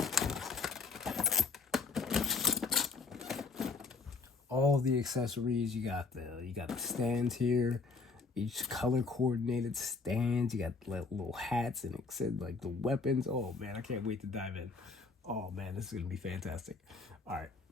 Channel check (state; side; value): quieter; right; 4.4 dB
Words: all the accessories. You got the stands here. Each color coordinated stands. You got little hats, and it said like the weapons. Oh man, I can't wait to dive in. Oh man, this is gonna be fantastic. All right.